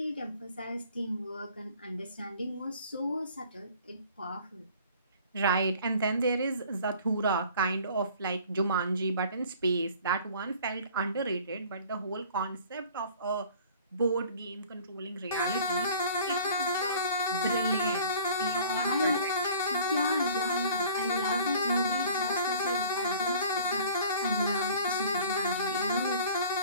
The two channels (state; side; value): inverted; both; correlation -0.49